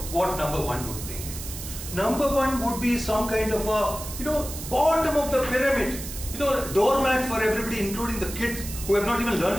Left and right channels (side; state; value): right; noise; hiss, 10 dB below the sound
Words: what number 1 would think. Number 1 would be some kind of a, bottom of the pyramid, doormat for everybody, including the kids who have not even learned